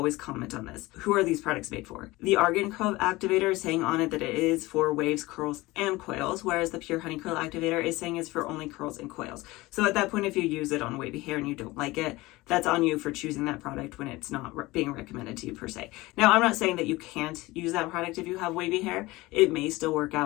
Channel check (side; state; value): right; quieter; 20.3 dB